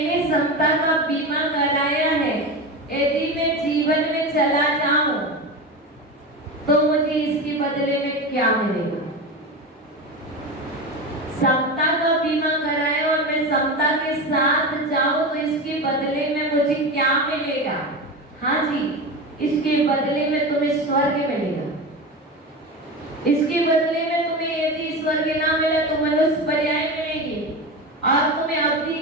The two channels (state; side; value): normal; both; correlation 0.23